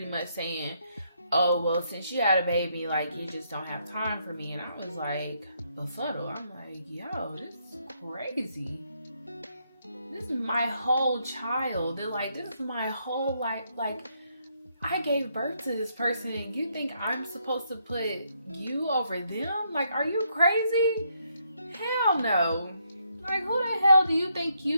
much saying, oh, well, since you had a baby, like, you just don't have time for me. And I was like, befuddled. I'm like, yo, this is crazy. This is my whole child. They're like, this is my whole life. Like, I gave birth to this person, and you think I'm supposed to put you over them? Like, are you crazy? Hell no. Like, who the hell do you think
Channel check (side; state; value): both; inverted; correlation -0.75